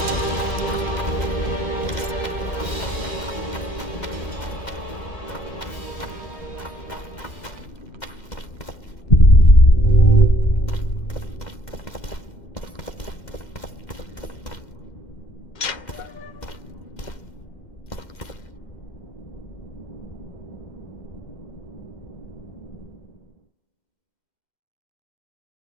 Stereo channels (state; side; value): late; right; 2.1 ms